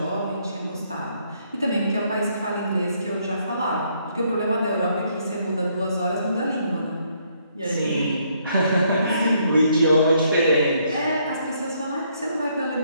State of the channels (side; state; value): both; inverted; correlation -0.70